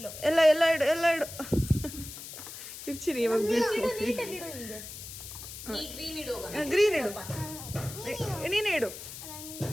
ಎಲ್ಲ ಇಡು, ಎಲ್ಲ ಇಡು. ಇಡ್ಚಿರಿ ಇವಾಗ ಬೀಳ್ತೀನಿ. ಗ್ರೀನ್ ಇಡು. ನೀನೇ ಇಡು.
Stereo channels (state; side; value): noise; left; hiss, 11 dB below the sound